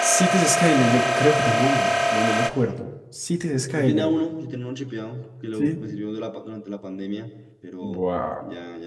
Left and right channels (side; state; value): both; identical; correlation 1.00